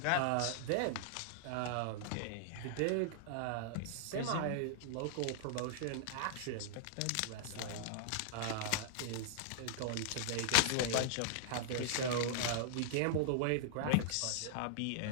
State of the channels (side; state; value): both; different; correlation -0.01